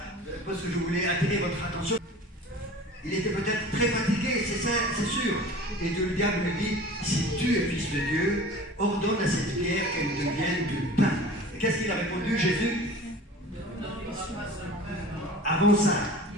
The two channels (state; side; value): normal; both; correlation 0.41